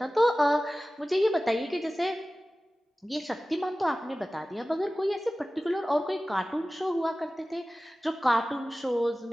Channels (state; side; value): normal; both; correlation 0.96